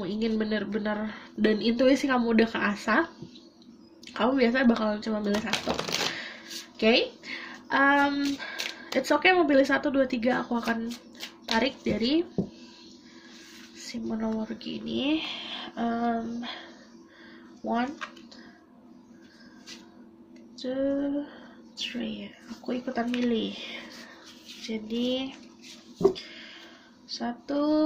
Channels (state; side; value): identical; both; correlation 1.00